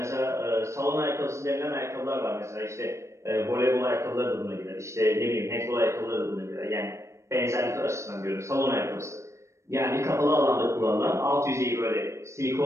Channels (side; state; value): left; late; 0.14 ms